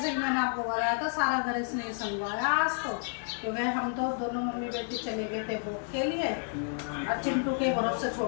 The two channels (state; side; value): silent; right; 57 dB below the other